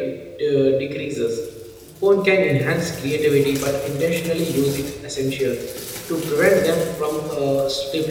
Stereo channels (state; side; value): identical; both; correlation 1.00